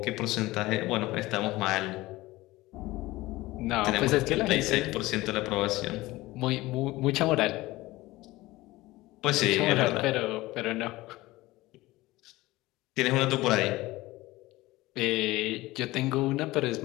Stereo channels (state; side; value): quieter; right; 19.1 dB